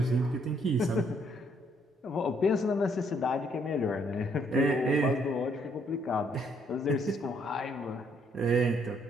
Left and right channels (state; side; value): normal; both; correlation 0.69